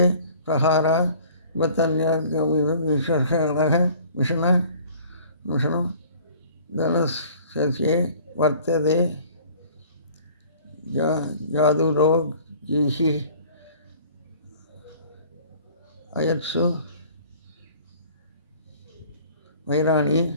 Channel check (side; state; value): both; inverted; correlation -0.50